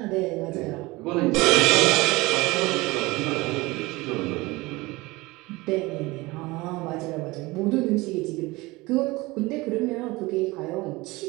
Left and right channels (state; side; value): quieter; left; 21.9 dB